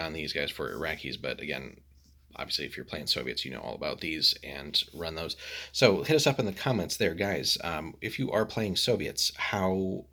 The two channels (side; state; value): both; identical; correlation 1.00